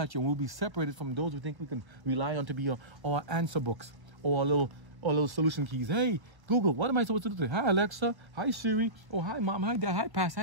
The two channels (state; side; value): late; left; 1.1 ms